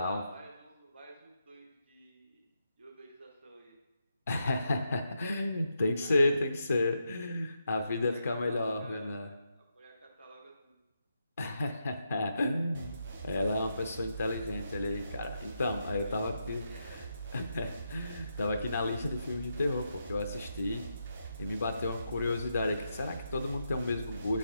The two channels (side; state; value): both; inverted; correlation -0.83